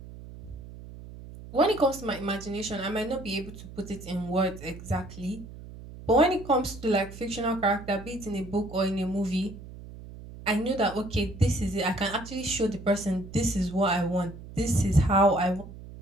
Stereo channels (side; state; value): right; noise; hum, 15 dB below the sound